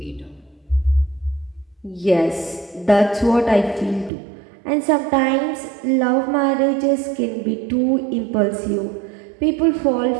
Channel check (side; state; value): left; drops out; at 4.1 s